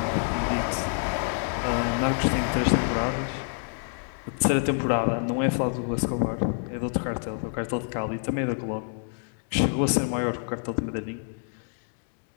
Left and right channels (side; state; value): right; silent; 60 dB below the other